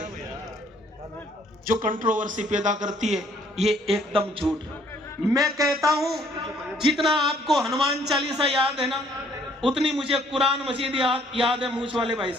जो कंट्रोवर्सी पैदा करती है। ये एकदम झूठ। मैं कहता हूं जितना आपको हनुमान चालीसा याद है ना, उतनी मुझे कुरान मजीद याद है मूछ वाले भाई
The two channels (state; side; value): normal; both; correlation 0.62